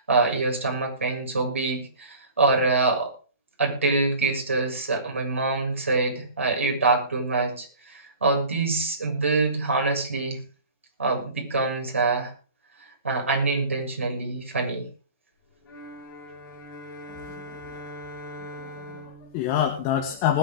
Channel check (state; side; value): inverted; both; correlation -0.40